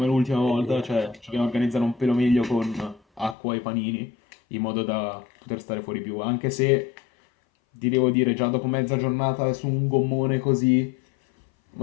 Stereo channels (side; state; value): right; drops out; at 3.4 s